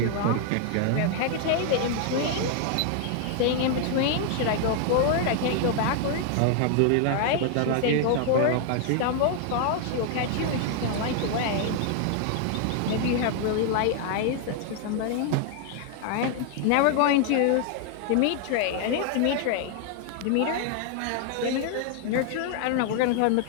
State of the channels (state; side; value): different; both; correlation 0.00